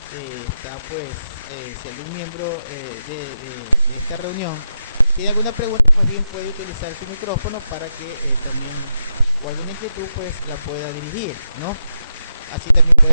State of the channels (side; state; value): both; inverted; correlation -0.87